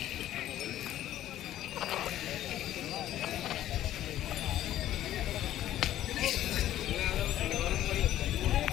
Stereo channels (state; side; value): quieter; right; 12.9 dB